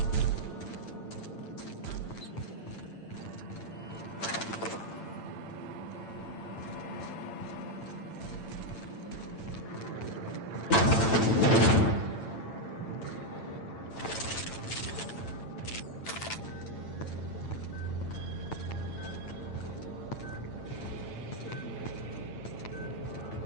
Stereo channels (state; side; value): late; right; 8.9 ms